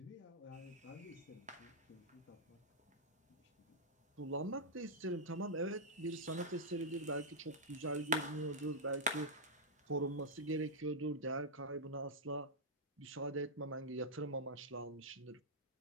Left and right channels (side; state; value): both; normal; correlation -0.08